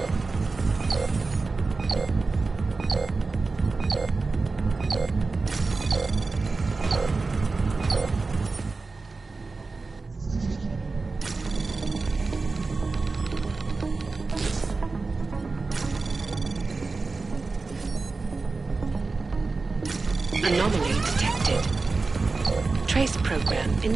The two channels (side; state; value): left; quieter; 3.9 dB